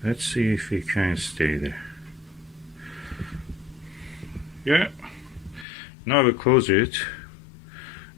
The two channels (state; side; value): drops out; right; at 5.7 s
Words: Let's see if we can stay there. Yeah. Now I will close it,